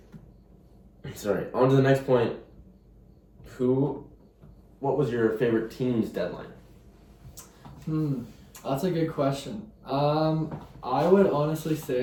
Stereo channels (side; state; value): both; identical; correlation 1.00